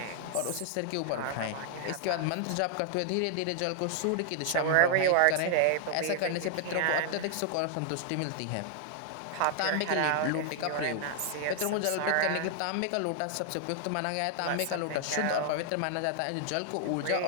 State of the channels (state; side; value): different; both; correlation 0.00